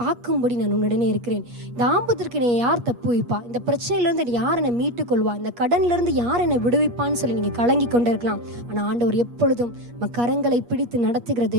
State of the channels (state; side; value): late; left; 8.4 ms